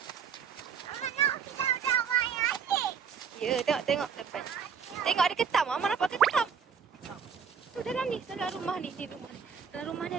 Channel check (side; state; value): left; quieter; 6.8 dB